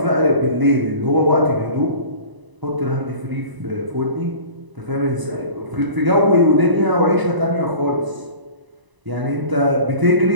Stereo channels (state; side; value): late; left; 1.0 ms